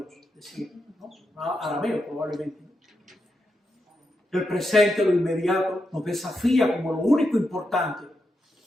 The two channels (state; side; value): normal; both; correlation 0.85